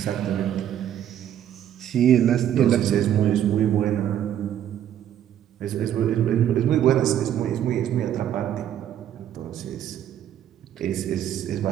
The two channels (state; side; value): quieter; left; 10.5 dB